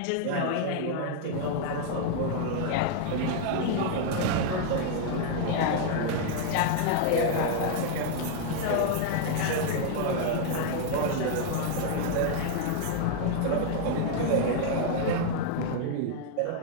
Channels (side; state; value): both; different; correlation 0.00